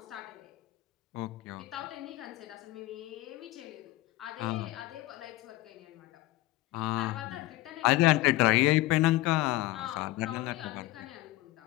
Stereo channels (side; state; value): right; quieter; 17.8 dB